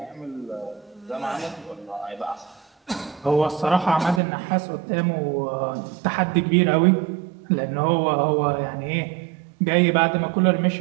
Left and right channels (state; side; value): drops out; left; at 4.2 s